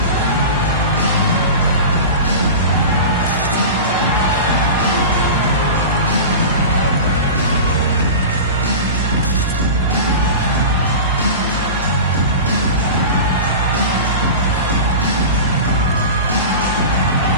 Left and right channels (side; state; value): both; inverted; correlation -0.30